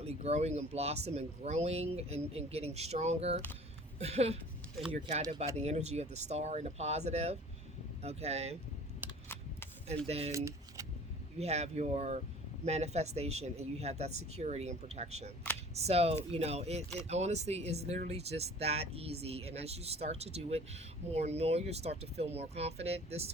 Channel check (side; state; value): both; normal; correlation 0.47